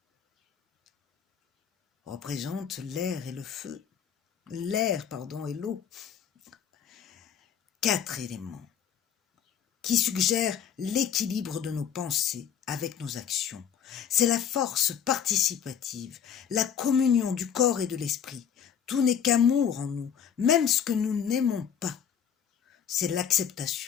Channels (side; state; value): right; quieter; 8.3 dB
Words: représentent l'air et le feu. l'air, pardon, et l'eau. 4 éléments qui suggèrent l'équilibre de nos pensées avec nos actions. C'est la force participative, la communion du corps et de l'esprit. Tout n'est qu'amour en nous, même ce que nous n'aimons pas. C'est